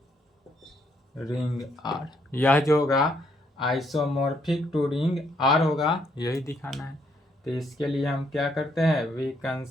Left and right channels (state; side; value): normal; both; correlation 0.72